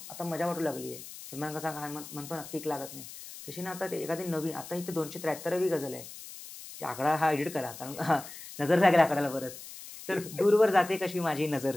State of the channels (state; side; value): noise; left; hiss, 14 dB below the sound